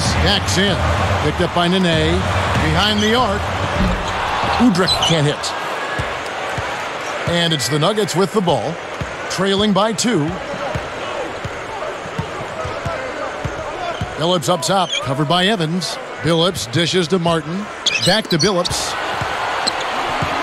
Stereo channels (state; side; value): identical; both; correlation 1.00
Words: backs in. Picked up by Nene. Behind the arc. Udrih can't hit. And it's the Nuggets with the ball. Trailing by 2. Billups up top. Covered by Evans. Billups dishes to Martin. Back to Billups.